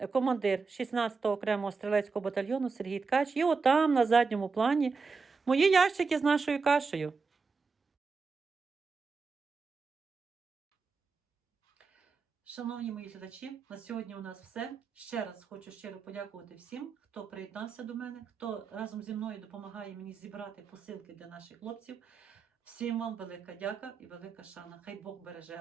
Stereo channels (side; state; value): left; quieter; 4.7 dB